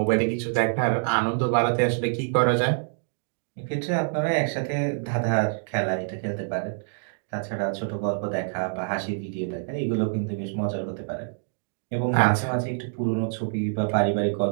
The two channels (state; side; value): silent; left; digital silence